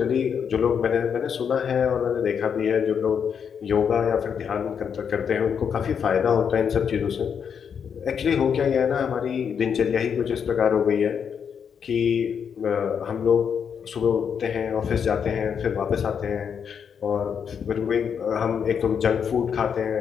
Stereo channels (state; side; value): quieter; right; 7.2 dB